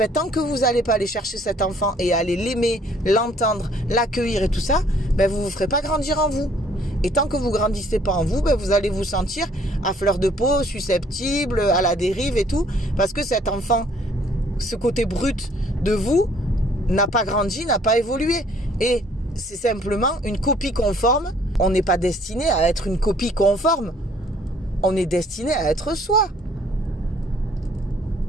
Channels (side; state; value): both; normal; correlation 0.61